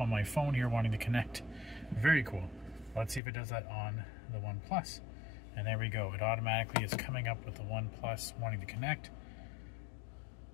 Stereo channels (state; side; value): drops out; right; at 3.2 s